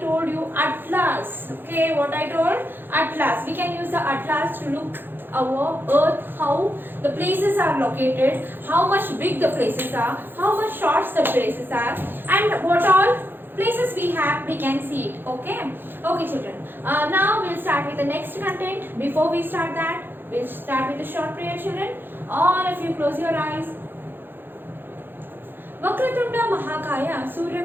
you, atlas. Okay, what I told? Atlas. We can use the atlas to look our earth, how the places are located, how much big the places are, how much short the places are, and what all places we have, we can see it. Okay, okay children. Now we'll start with the next content. Before we start that, we'll start with a short prayer, children. All of you close your eyes. Vakratunda महाकाय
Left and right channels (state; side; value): late; left; 0.099 ms